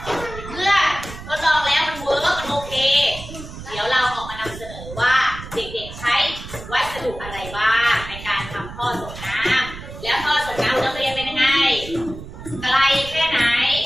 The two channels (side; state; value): right; noise; rumble, 12 dB below the sound